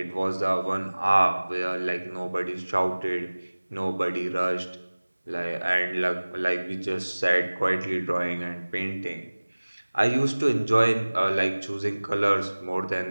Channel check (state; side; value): inverted; both; correlation -1.00